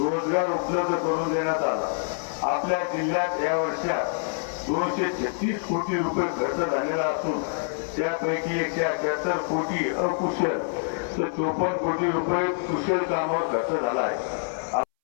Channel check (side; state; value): right; silent; 61 dB below the other